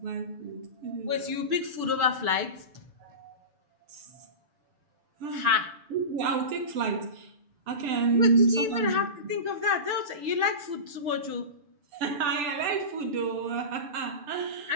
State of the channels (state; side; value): late; left; 6.9 ms